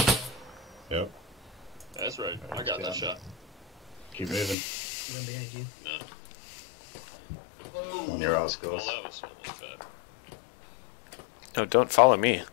Yep. That's right. I got that shot. Keep moving. No. On your ass, Oh, guys. that was almost bad. No, don't follow me.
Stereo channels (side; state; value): right; drops out; at 4.5 s